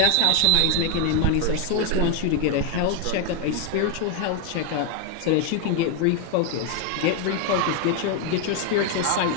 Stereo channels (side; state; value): both; different; correlation 0.01